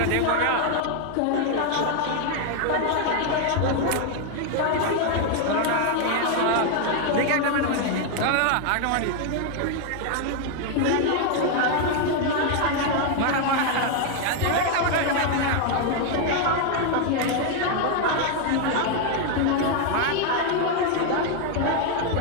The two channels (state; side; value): different; both; correlation 0.01